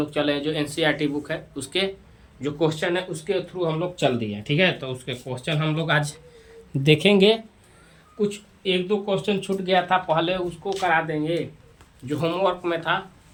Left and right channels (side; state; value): both; identical; correlation 1.00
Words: चले। जो एनसीईआरटी बुक है उसके जो क्वेश्चन है उसके थ्रू हम लोग चल दिए। ठीक है, तो उसके क्वेश्चन हम लोग आज देखेंगे। कुछ एक दो क्वेश्चन छूट गया था, पहले उसको करा देंगे जो होमवर्क में था,